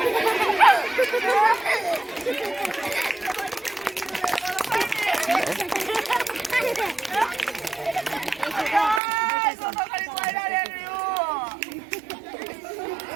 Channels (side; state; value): left; drops out; at 9.0 s